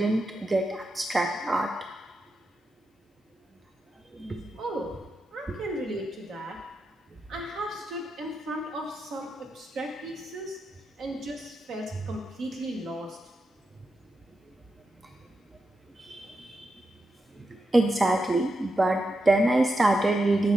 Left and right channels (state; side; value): normal; both; correlation 0.87